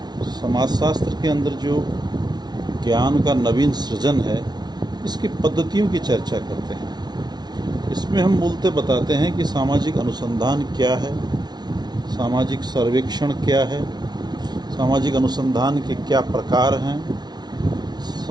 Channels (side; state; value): left; late; 0.20 ms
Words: समाजशास्त्र के अंदर जो ज्ञान का नवीन सृजन है, इसकी पद्धतियों की चर्चा करते हैं। इसमें हम मूलतः बताते हैं कि सामाजिक अनुसंधान क्या है, सामाजिक सर्वेक्षण क्या है, सामाजिक अनुसंधान के क्या प्रकार हैं,